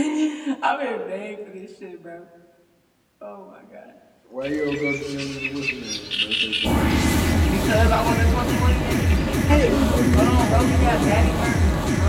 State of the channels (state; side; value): identical; both; correlation 1.00